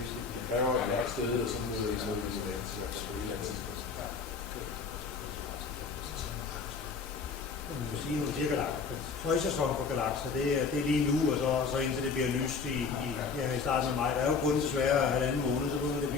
det kræver et mørkt sted og sådan noget illuminans, i hvert fald på et eller andet tidspunkt. Man kan sige, nu siger galakser. Højsæson for galakser, det er lige nu, og så indtil det bliver lyst i starten af maj. Der er jo kun desværre 1,5 måned, så begynder det at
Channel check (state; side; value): quieter; right; 5.1 dB